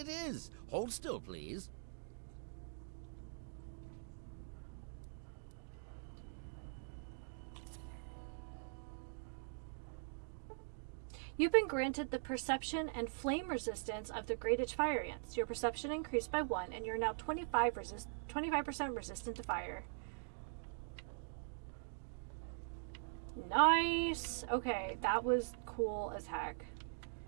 is. Hold still, please. You've been granted the perception and flame resistance of the great itch fire ants. Your perception increased by 1, and you're now 25% resistant to fire. Nice! Okay, that was cool as heck.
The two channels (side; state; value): left; silent; digital silence